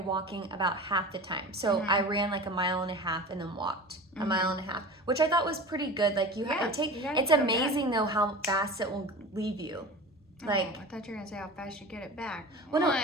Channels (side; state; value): both; normal; correlation 0.34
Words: walking about half the time. So I ran like 1.5 miles and then walked 1.5 miles, which I thought was pretty good. Like it's amazing though how fast it will leave you. Like I thought you were gonna say how fast you get it back. Well, no,